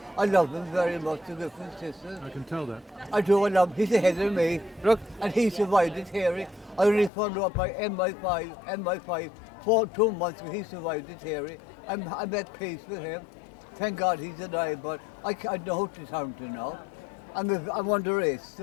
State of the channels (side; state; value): right; drops out; at 7.1 s